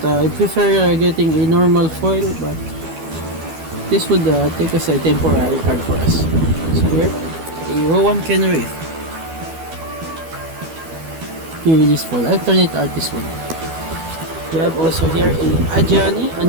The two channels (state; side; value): late; left; 12 ms